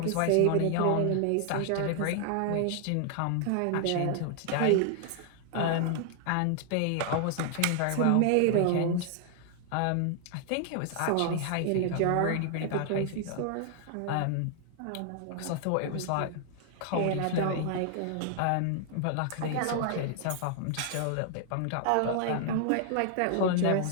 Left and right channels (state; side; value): different; both; correlation 0.00